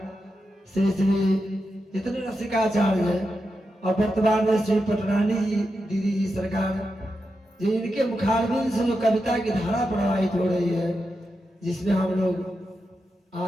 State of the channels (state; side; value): normal; both; correlation 0.88